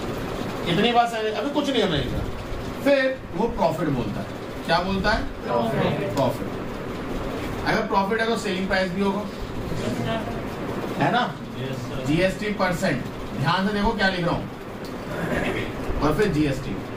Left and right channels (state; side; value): identical; both; correlation 1.00